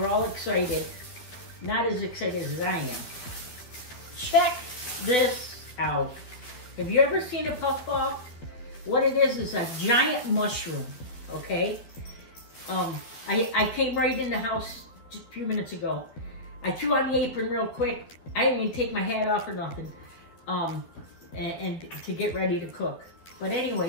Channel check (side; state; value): right; late; 12 ms